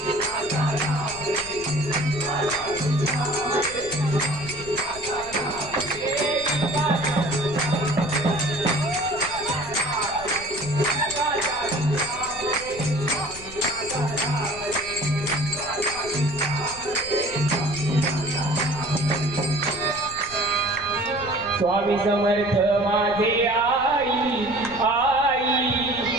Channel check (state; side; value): noise; left; rumble, 18 dB below the sound